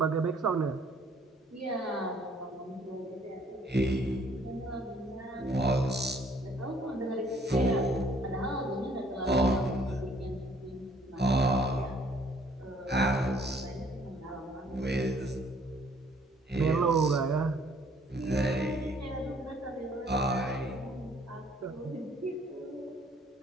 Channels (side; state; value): both; normal; correlation 0.61